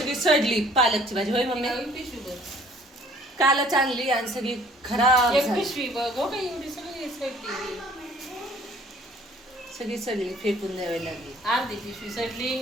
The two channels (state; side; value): normal; both; correlation 0.56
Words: सडली पालकची भाजी. होय मम्मी? कालच आणली आणि सगळी खराब झाली. सगळी सगळी फेकून द्यावी लागली. अर्धी पिशवी सडली